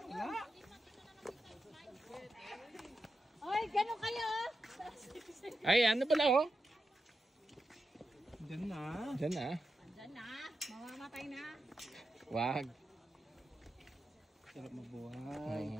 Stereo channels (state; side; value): normal; both; correlation 0.89